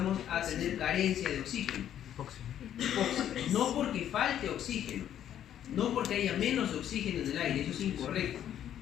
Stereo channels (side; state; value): right; quieter; 10.5 dB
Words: a tener carencia de oxígeno. No porque falte oxígeno, no porque haya menos oxígeno en el aire, eso es incorrecto.